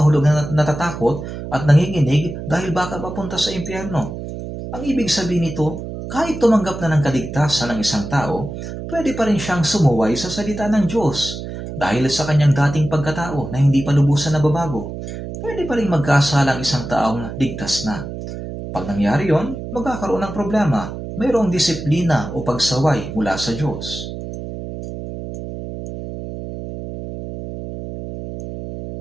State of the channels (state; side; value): noise; right; hum, 8 dB below the sound